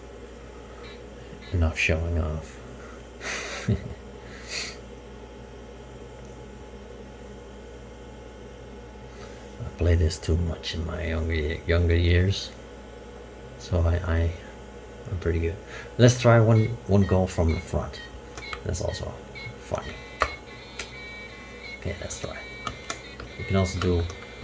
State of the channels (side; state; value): both; identical; correlation 1.00